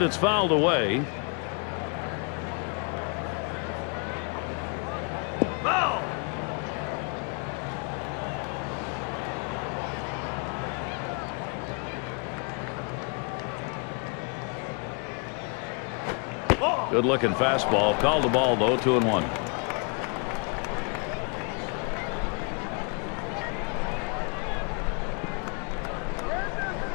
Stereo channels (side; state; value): right; quieter; 35.3 dB